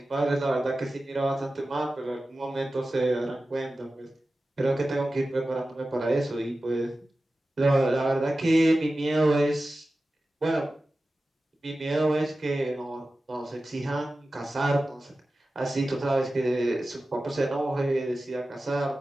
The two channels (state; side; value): normal; both; correlation 0.95